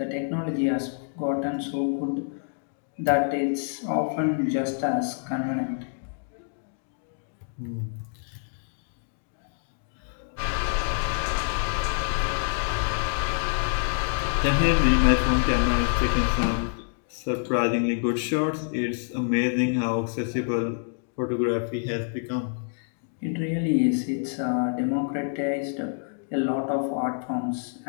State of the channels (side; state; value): right; silent; digital silence